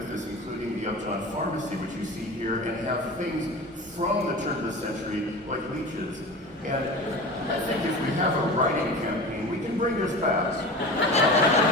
including the Upjohn Pharmacy, which you see here, and have things from the turn of the century, like leeches. And I think if we have a writing campaign, we can bring this back.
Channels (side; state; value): both; normal; correlation 0.33